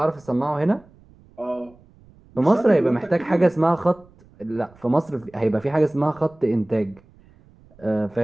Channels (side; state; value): right; noise; rumble, 27 dB below the sound